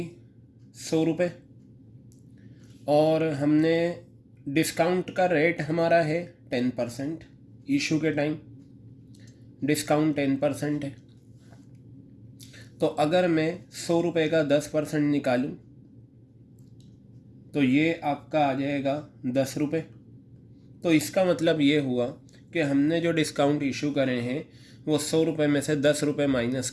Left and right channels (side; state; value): both; identical; correlation 1.00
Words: 100 रुपये और हमने डिस्काउंट का रेट हमारा है 10%. इशू के टाइम डिस्काउंट 10% है. तो अगर मैं 100 रुपये का 10% निकालूं तो ये आपका आ जाएगा 10 रुपये. तो इसका मतलब ये हुआ कि हमने जो डिस्काउंट इशू करे हैं वो 100 रुपये में से 10 रुपये माइनस